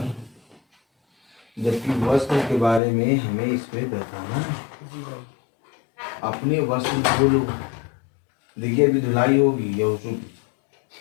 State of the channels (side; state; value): right; drops out; at 2.8 s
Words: जबकि वस्त्र के बारे में हमें इस पे बताना है। अपने वस्त्र धो लो। देखिए अभी धुलाई होगी या उसमें